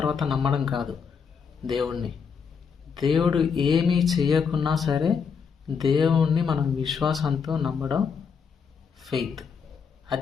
నమ్మడం కాదు. దేవుడు ఏమీ చేయకున్నా సరే దేవుణ్ణి మనం విశ్వాసంతో నమ్మడం ఫెయిత్.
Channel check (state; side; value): quieter; right; 6.2 dB